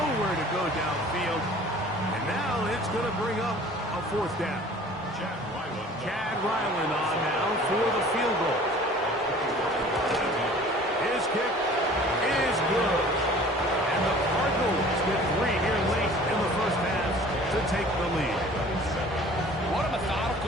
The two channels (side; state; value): both; normal; correlation 0.48